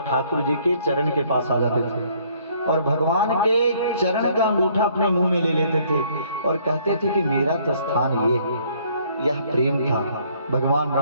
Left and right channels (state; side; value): inverted; both; correlation -0.63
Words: ठाकुर जी के चरण के पास आ जाते थे और भगवान के चरण का अंगूठा अपने मुंह में ले लेते थे और कहते थे कि मेरा तो स्थान ये है। यह प्रेम था भगवान